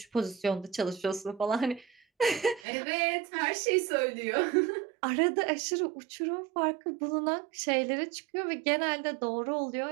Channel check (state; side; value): drops out; left; at 2.7 s